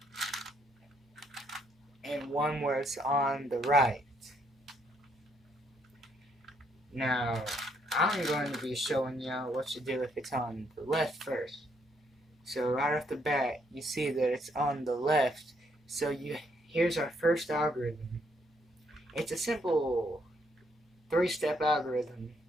and one where it's on the right. Now, I'm going to be showing y'all what to do if it's on the left first. So right off the bat, you see that it's on the left. So here's our first algorithm. It's a simple 3-step algorithm.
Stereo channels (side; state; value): both; normal; correlation 0.72